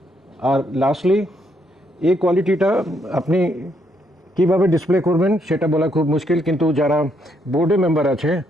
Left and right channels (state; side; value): normal; both; correlation 0.74